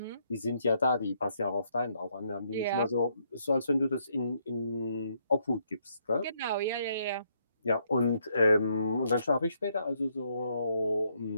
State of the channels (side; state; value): both; inverted; correlation -0.73